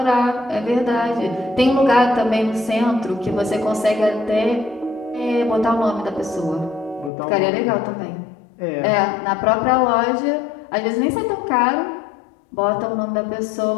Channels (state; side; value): drops out; right; at 7.1 s